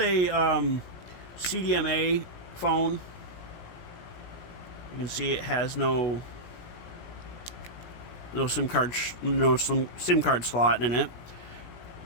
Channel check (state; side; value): late; right; 17 ms